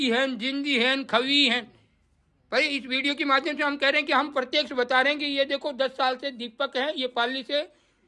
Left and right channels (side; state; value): both; identical; correlation 1.00